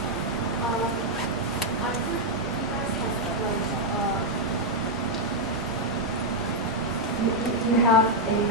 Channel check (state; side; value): normal; both; correlation -0.01